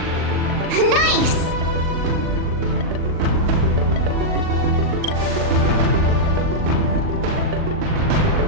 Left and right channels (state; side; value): late; left; 39 ms